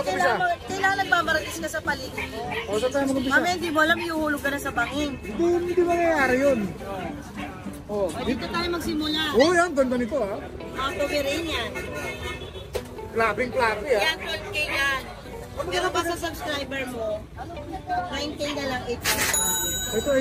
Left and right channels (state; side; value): identical; both; correlation 1.00